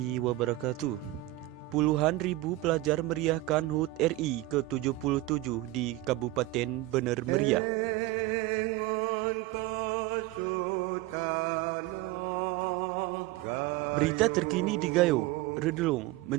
wabarakatuh. Puluhan ribu pelajar meriahkan HUT RI ke-77 di Kabupaten Bener Meriah. Berita terkini di Gayo, Redelung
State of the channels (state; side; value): quieter; left; 17.8 dB